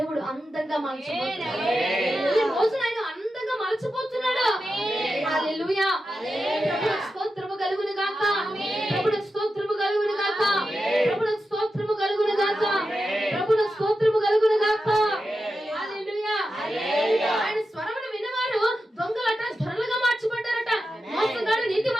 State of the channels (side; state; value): both; normal; correlation 0.90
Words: అందంగా మార్చబోతున్నాడు. ఈ రోజున ఆయన అందంగా మార్చబోతున్నాడు. హల్లెలూయా. ప్రభువుకు స్తోత్రము కలుగును గాక. ప్రభువుకు స్తోత్రము కలుగును గాక. ప్రభువుకు స్తోత్రము కలుగును గాక. ప్రభువుకు స్తోత్రము కలుగును గాక. హల్లెలూయా. ఆయన స్వరమును విన్నవారు దొంగలట ధరలుగా మార్చబడ్డారట. మోసగాడు